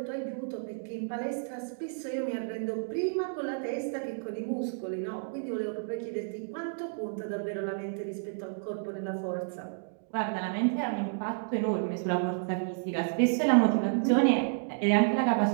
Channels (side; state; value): left; silent; digital silence